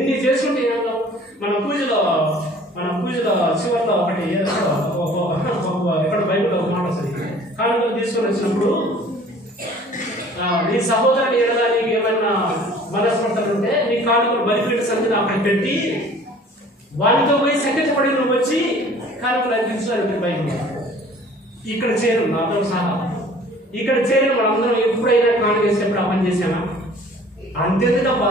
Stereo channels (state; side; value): normal; both; correlation 0.50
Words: చేసుకుంటే ఏం లాభం? మన పూజలో చివరిలో ఒకటి ఎక్కడ బైబిల్లో ఒక మాట వస్తుంది. కానుకలు తీసుకొని వచ్చినప్పుడు నీ సహోదరుని ఎడలా నీకు ఏమైనా మనస్పర్ధలు ఉంటే నీ కానుకలు బలిపీఠ సంధిని అక్కడ పెట్టి వాటితో పోయి సంకటపడి నువ్వు వచ్చి కానుకలు అందించాలి. బైబిల్ ఇక్కడ చేరు నాతో సహా ఇక్కడ చేరు మనందరం ఎప్పుడైనా కానుక వేసినప్పుడు ఆ పని చేసామా? అంతేందుకు